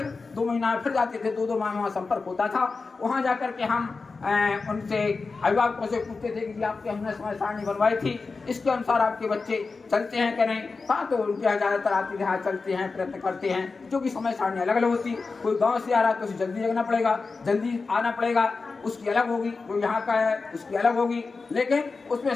2 महीना फिर जाते थे, 2-2 माह वहाँ संपर्क होता था। वहाँ जाकर के हम उनसे अभिभावकों से पूछते थे कि आपके हमने समय सारणी बनवाई थी, इसके अनुसार आपके बच्चे चलते हैं कि नहीं। हाँ, तो उनके यहाँ ज़्यादातर आती है, हाँ चलते हैं, प्रयत्न करते हैं, जो कि समय सारणी अलग अलग होती। कोई गांव से आ रहा है तो उसे जल्दी जगना पड़ेगा, जल्दी आना पड़ेगा, उसकी अलग होगी। कोई यहाँ का है उसकी अलग होगी। लेकिन उसमें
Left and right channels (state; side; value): quieter; right; 4.2 dB